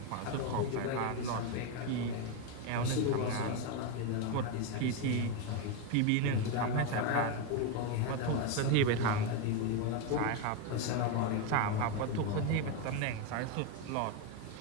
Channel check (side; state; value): both; different; correlation 0.02